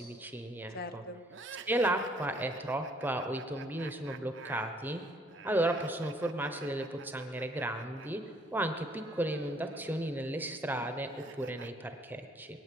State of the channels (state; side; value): normal; both; correlation 0.63